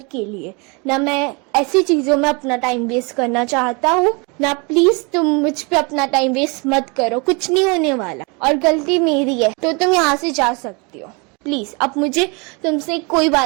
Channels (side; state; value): left; quieter; 30.2 dB